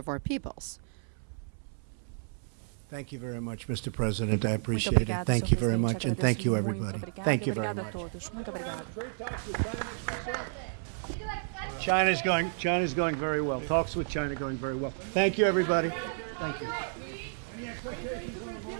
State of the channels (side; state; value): left; silent; 57 dB below the other